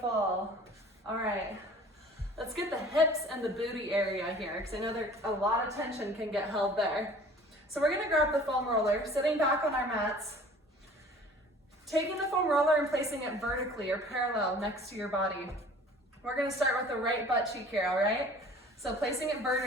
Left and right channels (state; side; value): normal; both; correlation 0.48